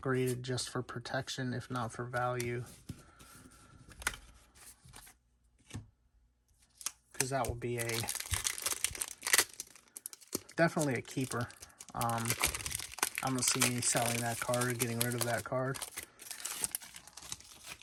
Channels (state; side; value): identical; both; correlation 1.00